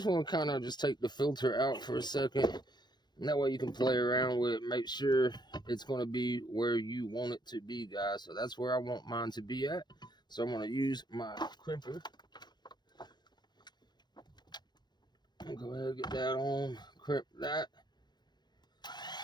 want to kind of just take the filter out for a second, and that way you can play around with it, make sure it's going to be where you want it to be, guys. So that's where I want mine to be at. So I'm going to use my crimper. I'll go ahead and get that on, crimp that.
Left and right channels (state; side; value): late; right; 0.21 ms